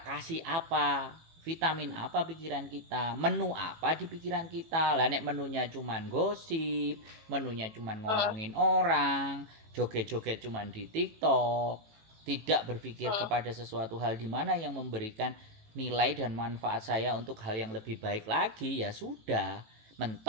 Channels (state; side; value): late; left; 18 ms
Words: kasih apa, vitamin apa pikiran kita, menu apa di pikiran kita. Lah nek menunya cuman gosip, menunya cuman ngomongin orang, joget-joget cuman di TikTok, tidak berpikir kepada sesuatu hal di mana yang memberikan nilai dan manfaat saya untuk hal yang lebih baik lagi, ya sudah,